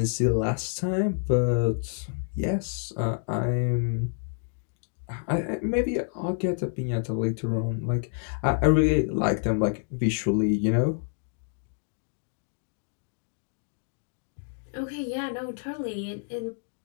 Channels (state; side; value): silent; right; digital silence